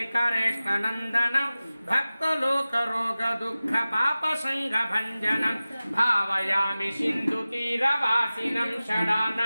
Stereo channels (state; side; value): inverted; both; correlation -0.97